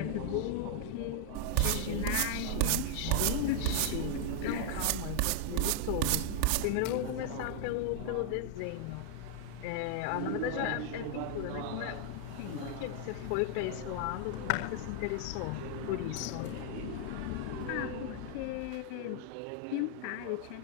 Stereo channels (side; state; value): both; different; correlation 0.00